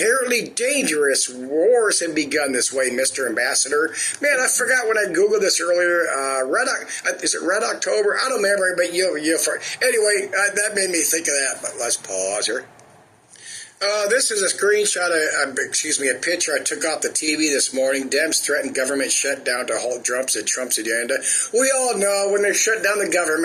dangerous. Wars have begun this way, Mr. Ambassador. Man, I forgot when I Googled this earlier. Is it Red October? I don't remember, but anyway, that made me think of that. But let's pause here. This is a screenshot, a picture I took off the TV this morning. Dems threaten government shutdown to halt Trump's agenda. We all know when they shut down the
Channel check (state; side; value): identical; both; correlation 1.00